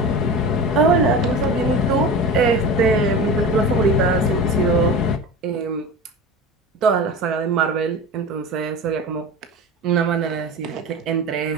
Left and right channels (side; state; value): both; normal; correlation 0.30